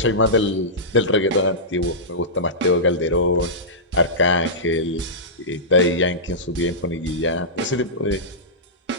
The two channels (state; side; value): normal; both; correlation -0.16